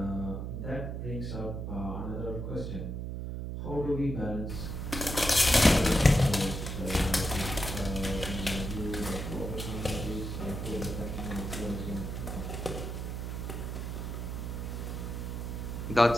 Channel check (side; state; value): right; noise; hum, 4 dB below the sound